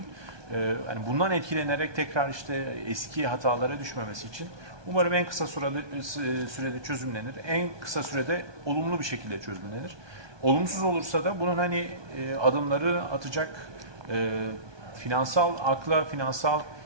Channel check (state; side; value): late; left; 1.2 ms